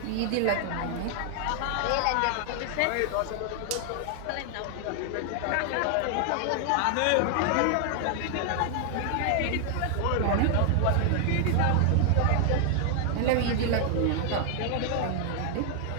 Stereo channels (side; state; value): both; different; correlation 0.00